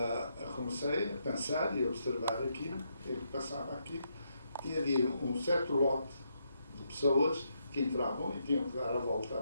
comecei a pensar e a observar aquilo, o que passava aqui. Tinha de ir certo lote de pessoas que entravam e tinham que dar a volta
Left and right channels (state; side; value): inverted; both; correlation -0.78